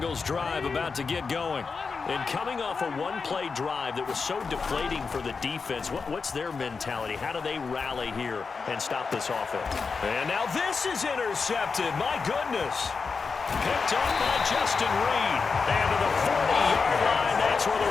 drive about to get going. And coming off a one-play drive that was so deflating for the defense, what's their mentality? How do they rally here and stop this offense? And now this is intercepted. My goodness. Picked up by Justin Reed. And to the 40-yard line, that's where the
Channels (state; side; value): quieter; right; 4.9 dB